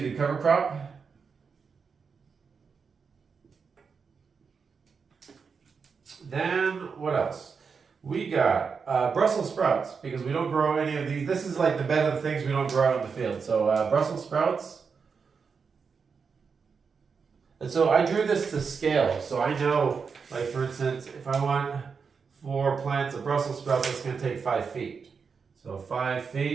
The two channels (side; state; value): left; quieter; 5.6 dB